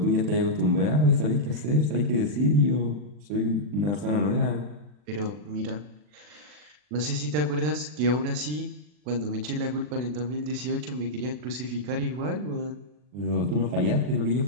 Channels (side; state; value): left; late; 40 ms